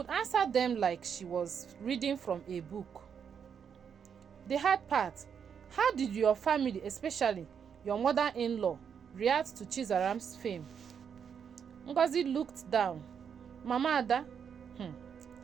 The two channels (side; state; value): left; quieter; 7.3 dB